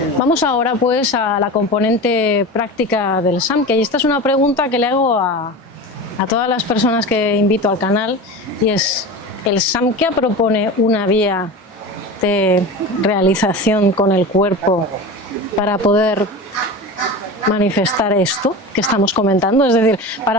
Vamos ahora pues a la componente práctica del Samkhya, y esta es una pregunta que le hago a todas las personas que invito al canal, y es: ¿el Samkhya propone una vía de realización con el cuerpo para poder manifestar esto que estamos comentando? Es decir,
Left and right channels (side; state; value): both; normal; correlation 0.29